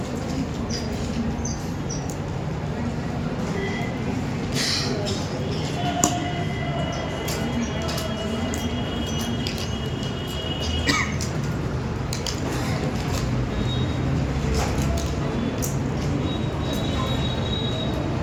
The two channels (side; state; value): both; identical; correlation 1.00